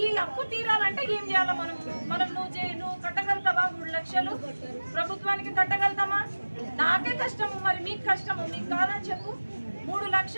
ఈ అప్పు తీరాలంటే ఏం చేయాలి? మనం నువ్వు కట్టగలుగుతావా? 3 లక్షలు ప్రభుత్వానికి కట్టగలుగుతామా? నాకే కష్టము, మరి మీకు కష్టము, మీకు కాదని చెప్పు. 3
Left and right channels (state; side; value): inverted; both; correlation -1.00